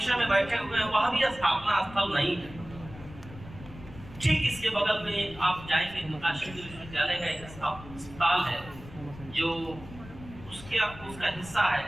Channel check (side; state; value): left; noise; rumble, 16 dB below the sound